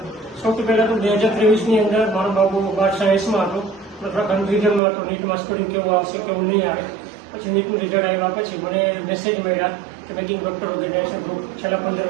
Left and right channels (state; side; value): drops out; left; at 4.8 s